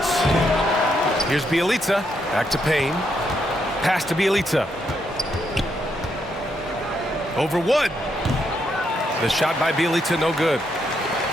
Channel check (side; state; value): both; normal; correlation 0.78